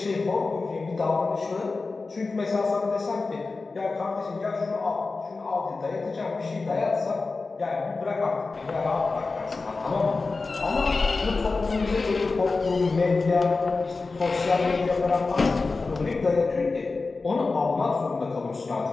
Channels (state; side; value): quieter; right; 3.9 dB